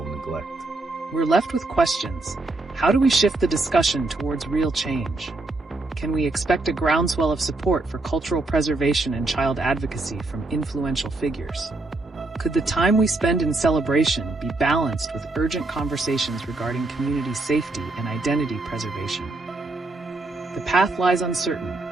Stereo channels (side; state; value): left; quieter; 3.1 dB